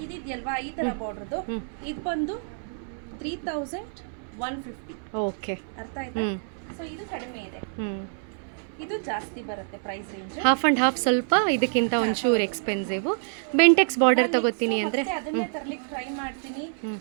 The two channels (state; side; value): silent; left; 60 dB below the other